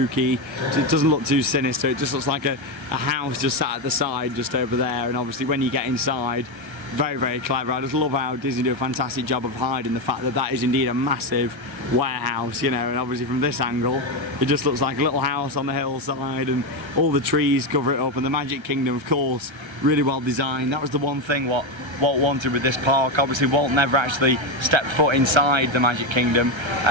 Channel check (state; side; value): late; left; 1.3 ms